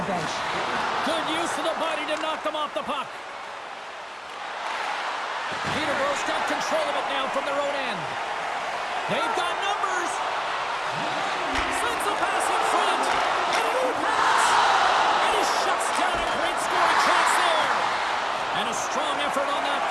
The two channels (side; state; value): both; identical; correlation 1.00